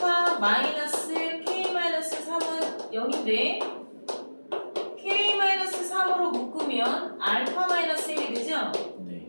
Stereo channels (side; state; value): both; inverted; correlation -1.00